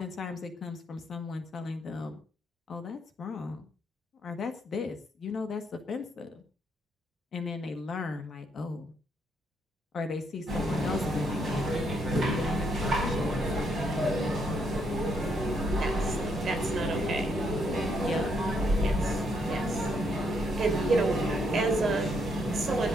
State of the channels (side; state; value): both; normal; correlation 0.74